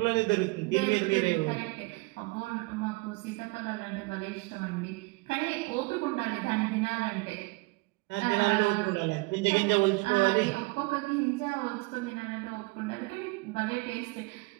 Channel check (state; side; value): quieter; left; 24.9 dB